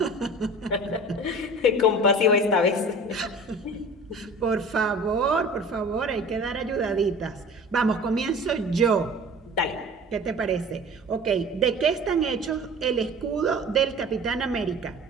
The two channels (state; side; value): normal; both; correlation 0.41